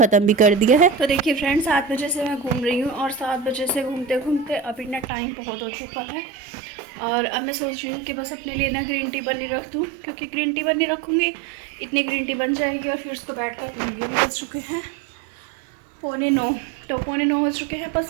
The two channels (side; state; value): left; drops out; at 5.1 s